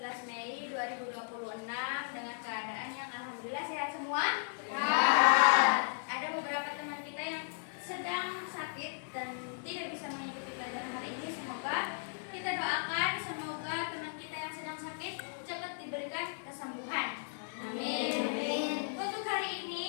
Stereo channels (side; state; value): right; silent; 54 dB below the other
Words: Mei 2026 dengan keadaan yang alhamdulillah sehat semua. Ada beberapa teman kita yang sedang sakit dan tidak bisa mengikuti pelajaran hari ini. Semoga kita doakan, semoga teman kita yang sedang sakit cepat diberikan kesembuhan. Amin. Untuk hari